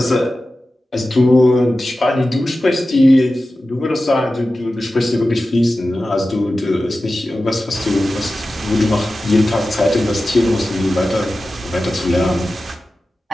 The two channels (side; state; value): both; normal; correlation 0.94